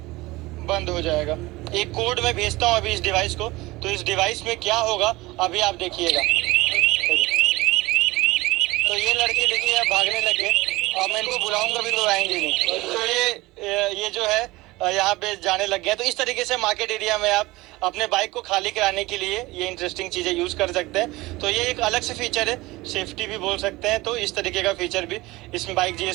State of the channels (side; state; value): left; quieter; 20.5 dB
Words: बंद हो जाएगा। एक कोड मैं भेजता हूँ अभी इस डिवाइस को, तो इस डिवाइस में क्या होगा अभी आप देखिएगा। तो ये लड़के देखिए अब भागने लगे, और मैं इनको बुलाऊंगा भी तो आएंगे नहीं। तो ये जो है यहाँ पे जाने लग गया। तो इस तरीके से मार्केट एरिया में आप अपने बाइक को खाली कराने के लिए ये इंटरेस्टिंग चीजें यूज कर सकते हैं। तो ये एक अलग से फीचर है, सेफ्टी भी बोल सकते हैं। तो इस तरीके का फीचर भी इसमें बाइक